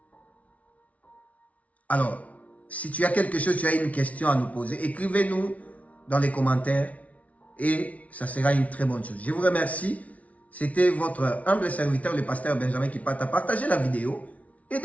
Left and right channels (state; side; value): late; right; 0.067 ms